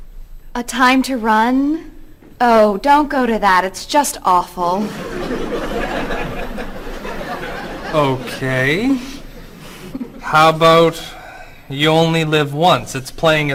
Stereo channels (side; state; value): both; identical; correlation 1.00